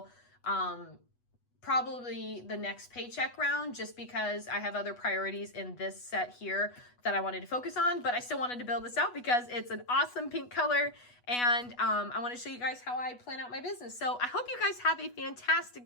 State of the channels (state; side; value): late; right; 8.2 ms